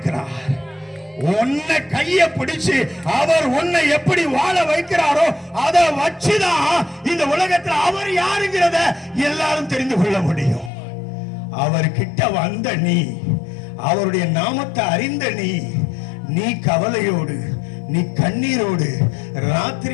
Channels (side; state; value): right; drops out; at 10.7 s